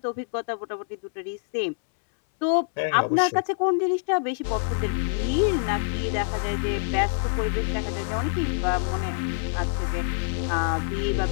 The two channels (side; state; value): right; silent; 61 dB below the other